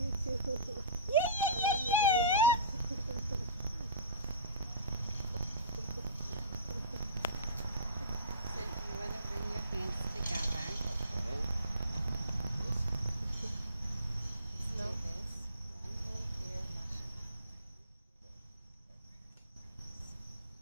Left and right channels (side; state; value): both; inverted; correlation -0.36